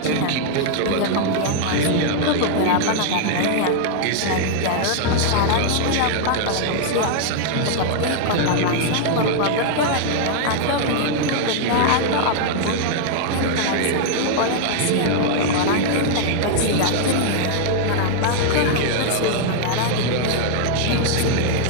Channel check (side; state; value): both; different; correlation 0.00